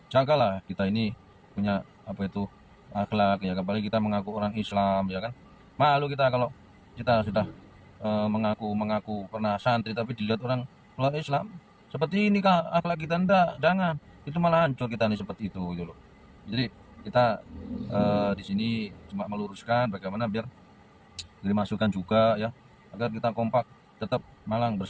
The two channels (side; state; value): both; identical; correlation 1.00